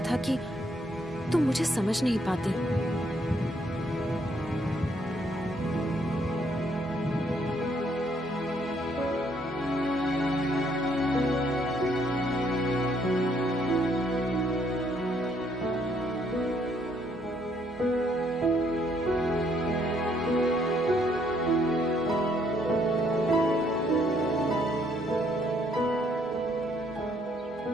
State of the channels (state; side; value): normal; both; correlation 0.69